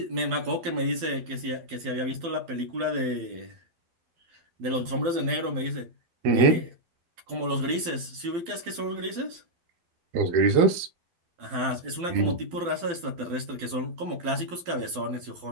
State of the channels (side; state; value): left; late; 12 ms